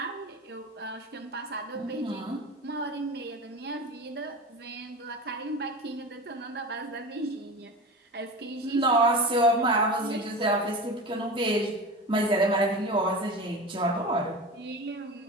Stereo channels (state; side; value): normal; both; correlation 0.29